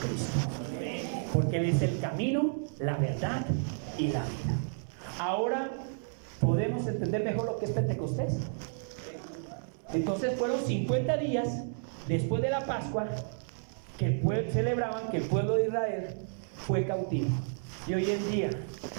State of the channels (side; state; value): left; silent; 57 dB below the other